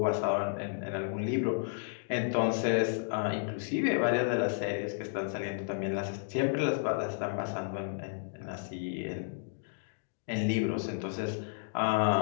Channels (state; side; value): silent; right; digital silence